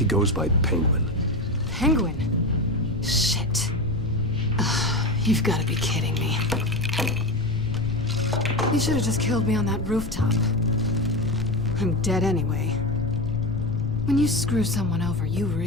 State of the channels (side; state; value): left; noise; rumble, 9 dB below the sound